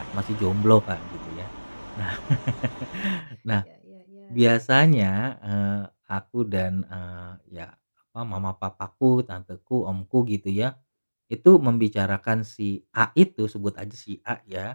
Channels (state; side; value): inverted; both; correlation -1.00